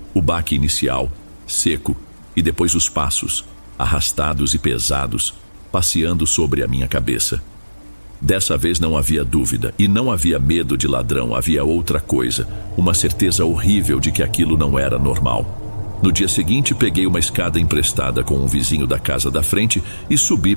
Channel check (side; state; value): both; inverted; correlation -1.00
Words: O baque inicial, seco, e depois os passos, arrastados e pesados, passeando sobre a minha cabeça. Dessa vez não havia dúvida, e não havia medo de ladrão, havia outra coisa, uma certeza horrível de que aquilo não era normal. No dia seguinte, peguei uma escada emprestada com um vizinho da casa da frente e subi